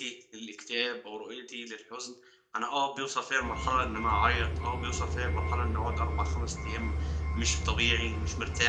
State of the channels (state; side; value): identical; both; correlation 1.00